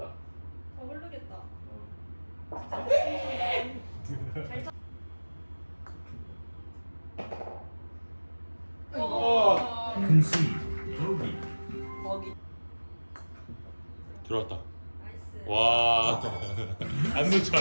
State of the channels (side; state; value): both; inverted; correlation -1.00